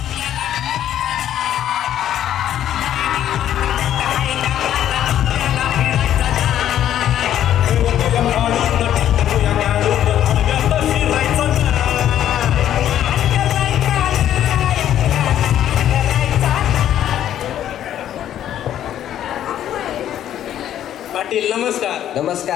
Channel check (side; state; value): right; quieter; 11.1 dB